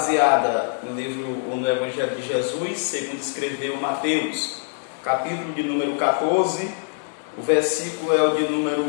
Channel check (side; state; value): right; silent; digital silence